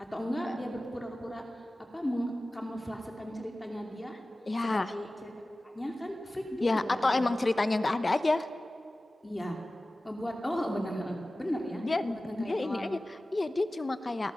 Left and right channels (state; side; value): normal; both; correlation 0.96